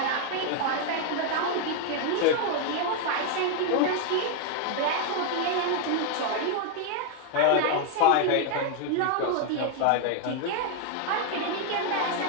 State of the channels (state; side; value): different; both; correlation 0.00